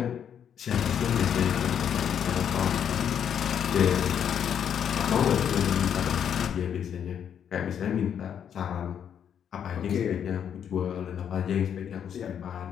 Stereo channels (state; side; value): quieter; right; 8.6 dB